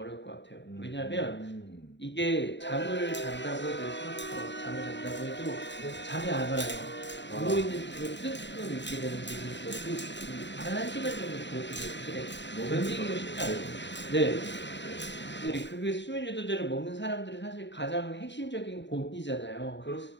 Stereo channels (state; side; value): late; right; 0.52 ms